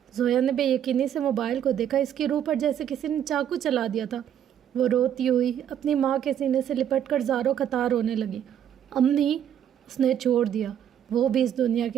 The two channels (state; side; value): quieter; left; 9.8 dB